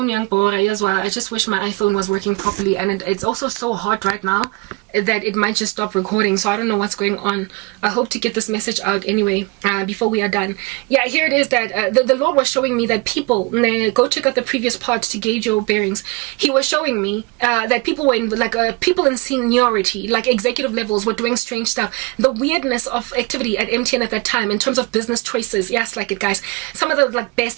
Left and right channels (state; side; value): quieter; left; 26.5 dB